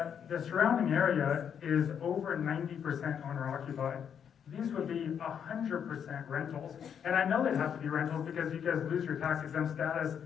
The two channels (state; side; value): quieter; right; 8.0 dB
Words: the surrounding area is over 90% owner occupied. These would be 100% rentals. And I know they'd have to be rentals because you guys lose your tax exempt status